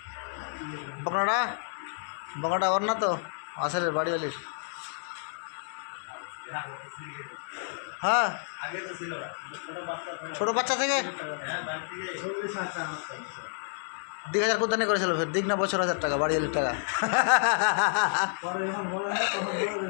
বকনাটা বকনাটা ওর না তো আসলে বাড়িওয়ালির হ্যাঁ আগে তো ছিল না ছোট বাচ্চা থেকে হ্যাঁ বাড়ি থেকে 40,000 টাকা আছে 10,000 কুদ্দানি করেছিল ফের দিক না বছর 1000 টাকা বাড়িওয়ালির টাকা পরে যখন বলা হয় তখন বলে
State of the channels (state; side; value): silent; right; digital silence